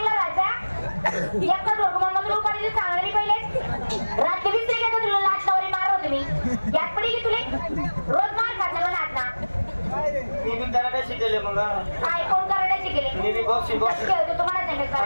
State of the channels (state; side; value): inverted; both; correlation -1.00